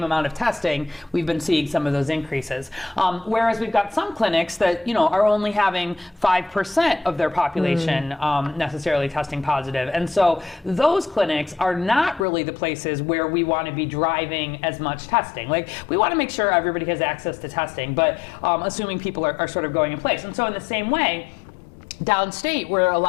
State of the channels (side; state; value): right; drops out; at 12.2 s